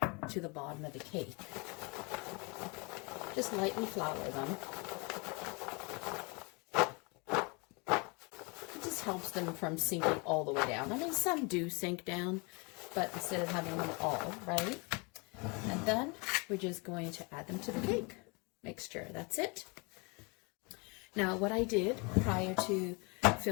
to the bottom of the cake. Just lightly flour them. It just helps them from sinking all the way down. I mean, some do sink down, but instead of having them all, right? And then we're just going to add them to the cake mixture. That's it. Now, what I did prior to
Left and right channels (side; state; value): right; quieter; 30.4 dB